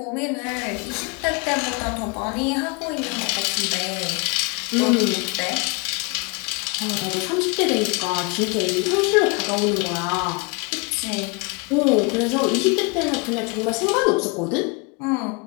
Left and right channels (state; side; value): quieter; right; 30.4 dB